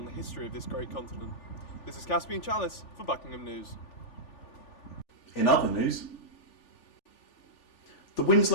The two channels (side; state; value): right; late; 3.4 ms